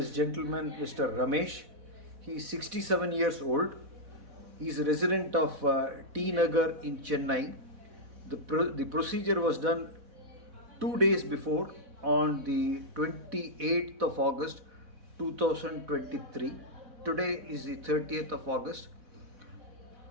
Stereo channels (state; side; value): late; left; 4.1 ms